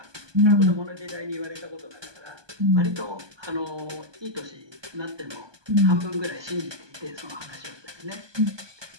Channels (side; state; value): left; late; 1.2 ms